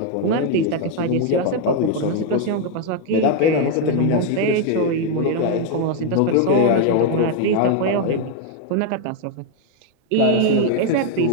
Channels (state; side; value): different; both; correlation 0.01